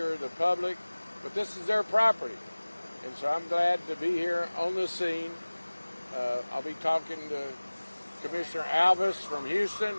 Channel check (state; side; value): inverted; both; correlation -1.00